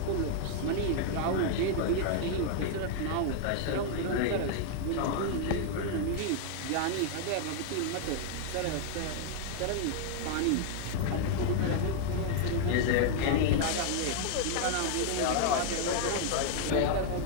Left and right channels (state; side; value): different; both; correlation 0.00